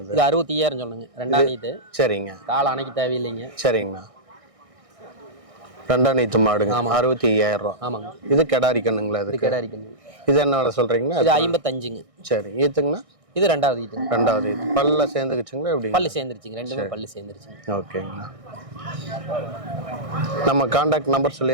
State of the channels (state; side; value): late; left; 1.6 ms